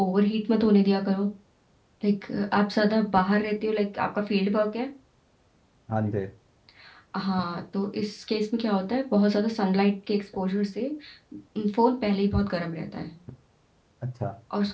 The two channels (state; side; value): identical; both; correlation 1.00